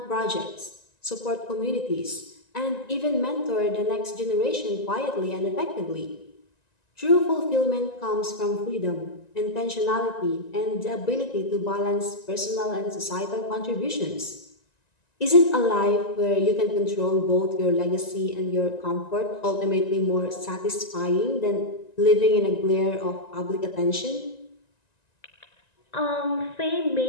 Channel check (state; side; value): late; right; 1.9 ms